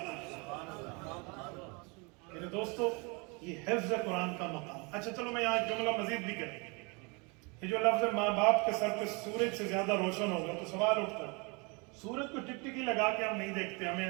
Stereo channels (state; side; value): quieter; left; 30.3 dB